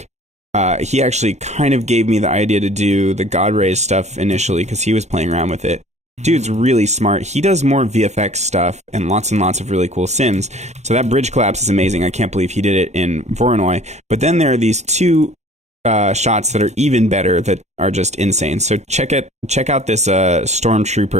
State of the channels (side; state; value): left; late; 0.33 ms